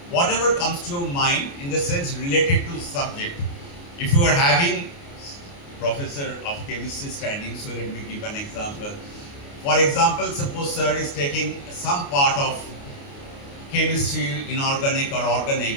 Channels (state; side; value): late; right; 29 ms